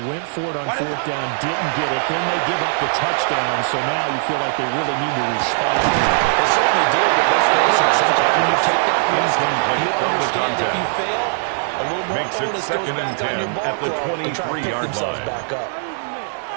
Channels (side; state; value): left; silent; digital silence